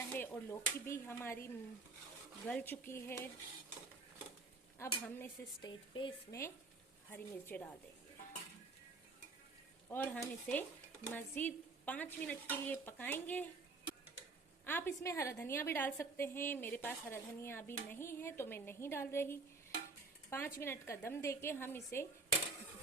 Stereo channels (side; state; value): left; quieter; 3.8 dB